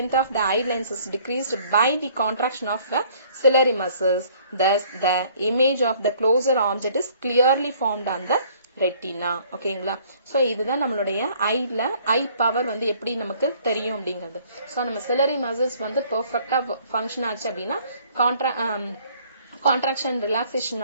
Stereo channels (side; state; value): both; inverted; correlation -0.59